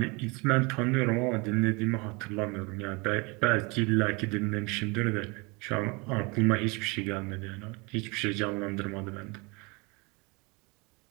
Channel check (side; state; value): left; quieter; 28.3 dB